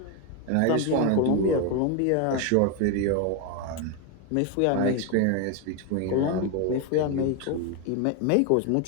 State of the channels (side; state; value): both; different; correlation 0.01